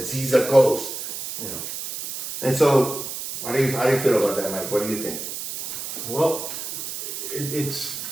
He's a ghost. You know? And so, how do you feel about that, Mike? What do you think? Well, it's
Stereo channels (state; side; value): noise; right; hiss, 7 dB below the sound